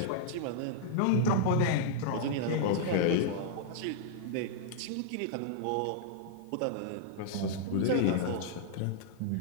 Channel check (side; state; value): both; different; correlation -0.01